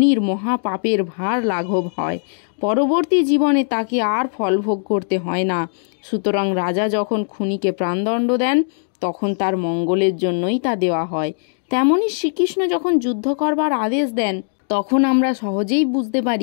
মহাপাপের ভার লাঘব হয়। পরবর্তী জীবনে তাকে আর ফলভোগ করতে হয় না। সুতরাং রাজা যখন খুনিকে প্রাণদণ্ড দেন, তখন তার মঙ্গলের জন্যই তা দেওয়া হয়। তেমনি শ্রীকৃষ্ণ যখন যুদ্ধ করবার আদেশ দেন, তখন আমরা সহজেই বুঝতে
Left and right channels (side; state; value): right; silent; digital silence